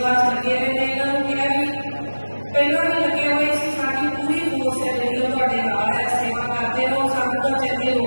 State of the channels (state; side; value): inverted; both; correlation -1.00